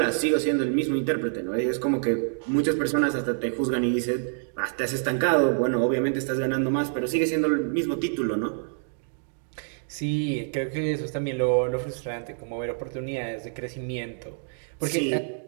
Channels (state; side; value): silent; left; digital silence